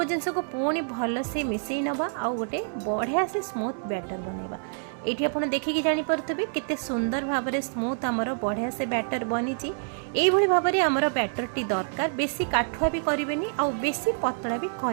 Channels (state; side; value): silent; left; digital silence